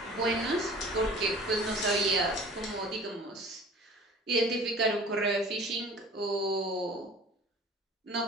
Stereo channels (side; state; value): both; normal; correlation 0.45